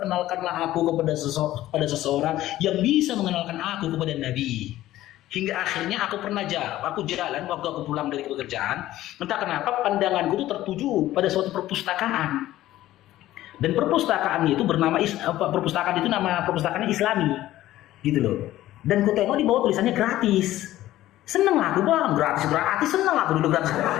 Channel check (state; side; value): quieter; right; 14.7 dB